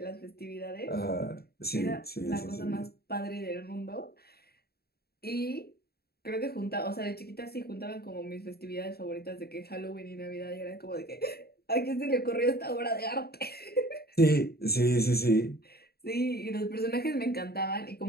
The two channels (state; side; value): late; right; 0.46 ms